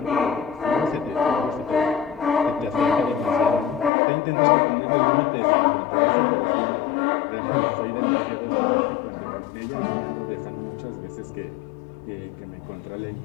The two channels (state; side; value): drops out; right; at 3.9 s